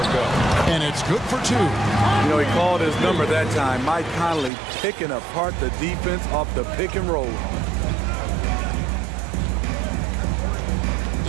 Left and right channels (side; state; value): left; drops out; at 4.5 s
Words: go. And it's good for 2. You know, he called his number that time. Mike Conley picking apart the defense off the pick and roll.